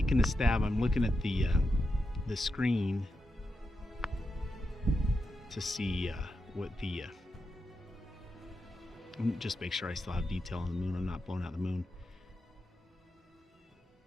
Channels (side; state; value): both; normal; correlation 0.87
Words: a stab. I'm looking at the screen to see what the just make sure I still have detail on the moon. I'm not blowing out the moon.